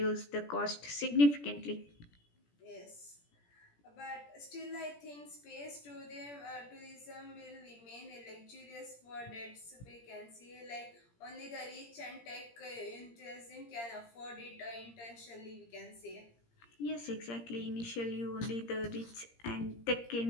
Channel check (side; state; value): right; late; 17 ms